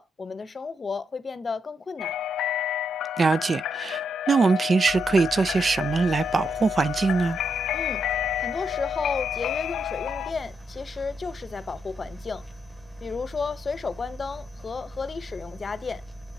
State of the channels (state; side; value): normal; both; correlation 0.80